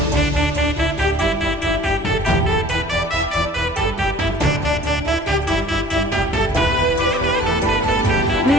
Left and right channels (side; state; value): both; normal; correlation 0.49